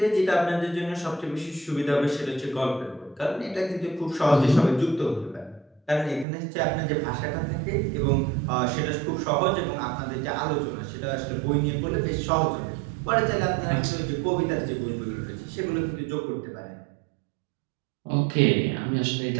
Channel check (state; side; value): drops out; left; at 6.2 s